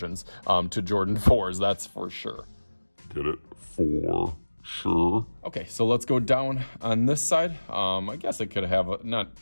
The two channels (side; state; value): both; inverted; correlation -1.00